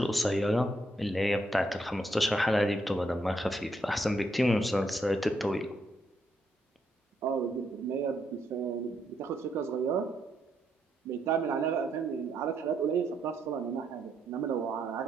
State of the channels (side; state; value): both; normal; correlation 0.77